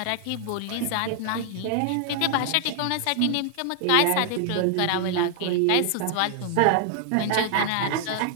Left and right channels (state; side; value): different; both; correlation 0.00